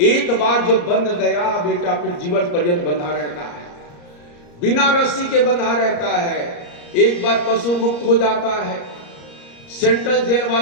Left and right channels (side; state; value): right; late; 34 ms